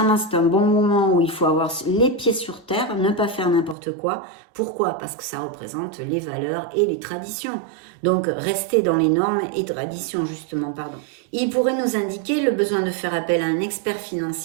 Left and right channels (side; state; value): left; drops out; at 3.8 s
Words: c'est un bon moment où il faut avoir les pieds sur terre, ne pas faire n'importe quoi. Pourquoi? Parce que ça représente les valeurs et les traditions. Donc, rester dans les normes et traditions, justement, pardon. Il pourrait nous indiquer le besoin de faire appel à un expert